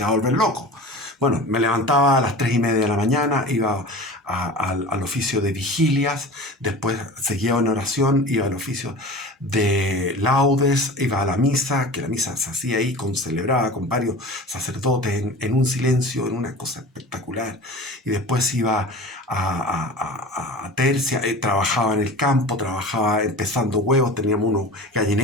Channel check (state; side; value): normal; both; correlation 0.36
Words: vas a volver loco. Bueno, me levantaba a las 3:30 de la mañana, iba al oficio de vigilias, después seguía en oración, iba al oficio de laudes, iba a la misa, que la misa se hacía ahí, celebraba con varios sacerdotes en un silencio, en una cosa espectacular. Y después iba a tercia, trabajaba en el campo, trabajaba empezando huevos, teníamos unos